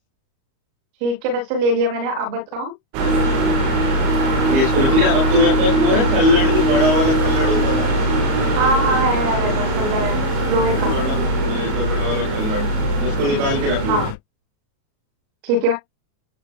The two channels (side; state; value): left; late; 38 ms